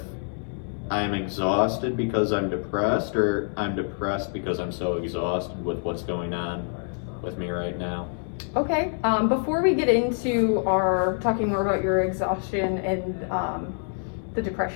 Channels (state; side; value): silent; right; 55 dB below the other